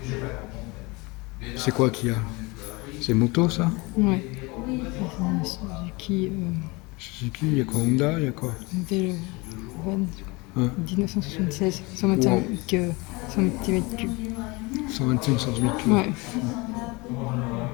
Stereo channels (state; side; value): quieter; right; 25.4 dB